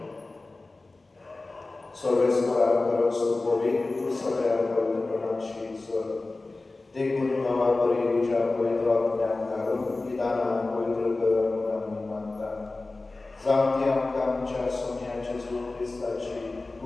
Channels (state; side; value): quieter; right; 3.3 dB